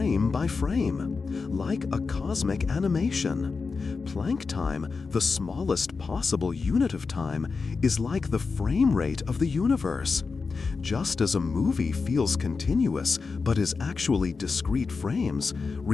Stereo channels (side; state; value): right; quieter; 4.6 dB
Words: by frame, like a cosmic animation. Planck time, the smallest possible unit of time, is like the frame rate of the universe. Just as a movie feels continuous but is actually discrete frames,